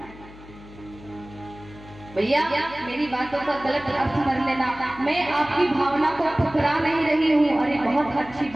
भैया मेरी बातों का गलत अर्थ मत लेना, मैं आपकी भावना को ठुकरा नहीं रही हूँ। अरे बहुत अच्छी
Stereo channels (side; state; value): left; noise; hum, 19 dB below the sound